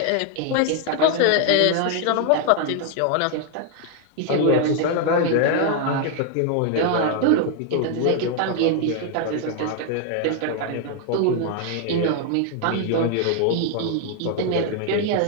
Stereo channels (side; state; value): both; different; correlation 0.00